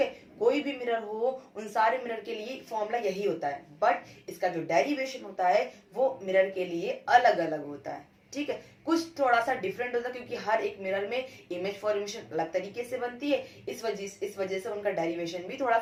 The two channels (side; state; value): both; identical; correlation 1.00